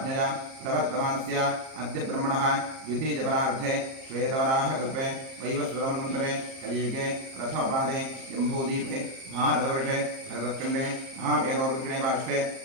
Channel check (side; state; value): left; late; 38 ms